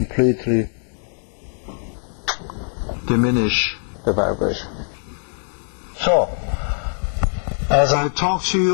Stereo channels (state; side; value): silent; right; digital silence